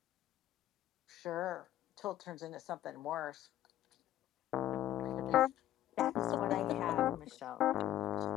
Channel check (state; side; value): quieter; right; 12.8 dB